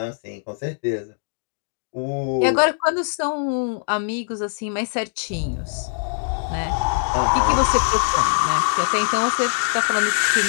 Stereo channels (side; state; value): right; silent; 64 dB below the other